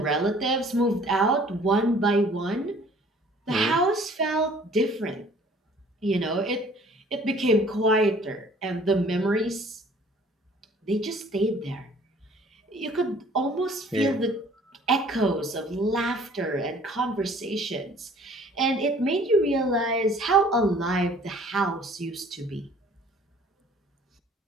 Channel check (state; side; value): normal; both; correlation 0.54